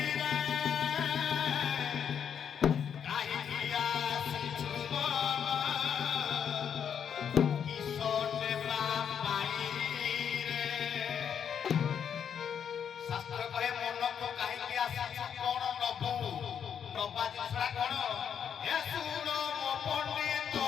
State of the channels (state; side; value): quieter; right; 8.0 dB